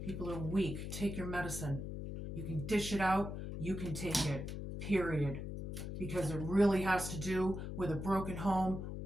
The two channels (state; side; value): noise; left; hum, 6 dB below the sound